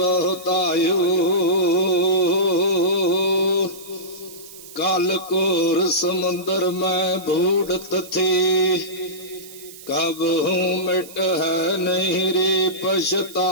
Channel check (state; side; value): noise; right; hiss, 18 dB below the sound